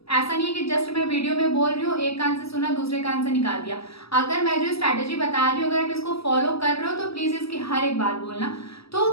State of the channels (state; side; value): late; right; 0.76 ms